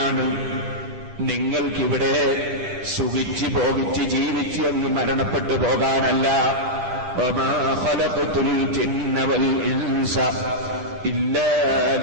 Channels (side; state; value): left; late; 9.9 ms